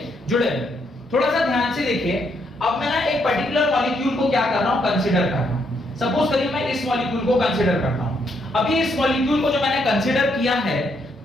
जुड़े हुए। थोड़ा सा ध्यान से देखिए, अब मैं ना एक पर्टिकुलर मॉलिक्यूल को क्या कर रहा हूं, कंसीडर कर रहा हूं। सपोज करिए मैं इस मॉलिक्यूल को कंसीडर करता हूं। अभी इस मॉलिक्यूल को जो मैंने कंसीडर किया है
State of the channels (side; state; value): both; normal; correlation 0.75